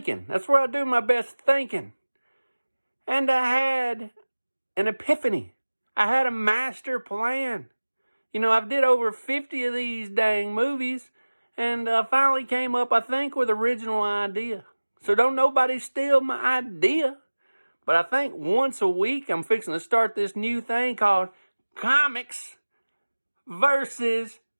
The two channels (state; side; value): inverted; both; correlation -1.00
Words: That's where I do my best thinking. And I had an epiphany. I had a master plan. I did over 50 of these dang movies, and finally came up, I think, with original idea. So don't nobody steal my idea. But I think once a week, I'm fixing to start this new thing called Comics versus